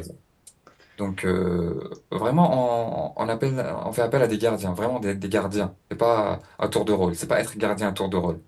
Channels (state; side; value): identical; both; correlation 1.00